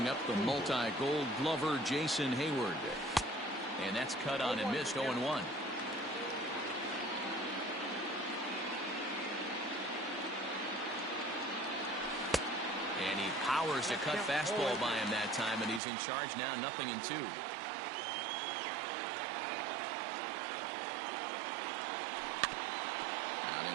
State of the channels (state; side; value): drops out; left; at 15.8 s